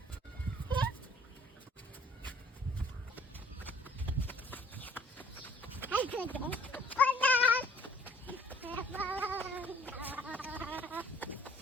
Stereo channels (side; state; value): both; normal; correlation 0.56